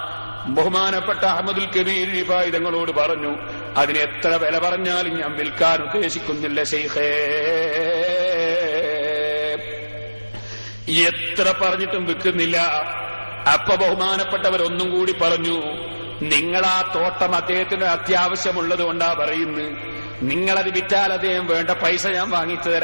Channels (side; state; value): both; inverted; correlation -1.00